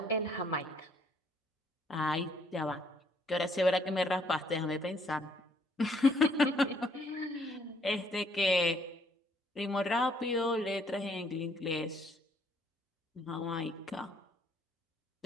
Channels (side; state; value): both; normal; correlation 0.66